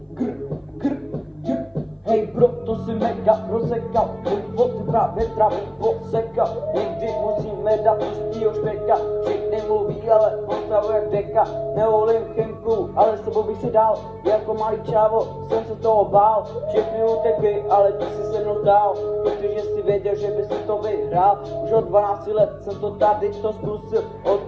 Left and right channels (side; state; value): both; identical; correlation 1.00